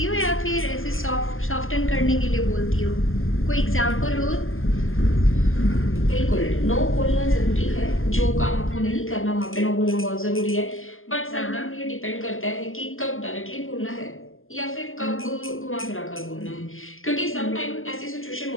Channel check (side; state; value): right; late; 0.59 ms